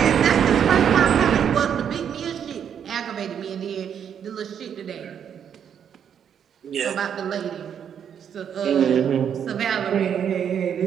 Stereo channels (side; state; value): left; quieter; 8.4 dB